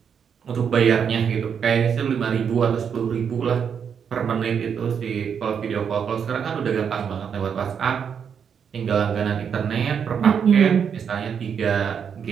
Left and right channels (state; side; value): quieter; left; 7.3 dB